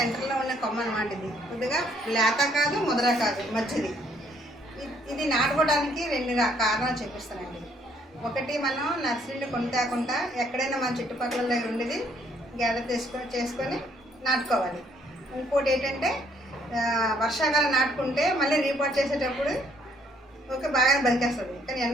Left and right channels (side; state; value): both; normal; correlation 0.66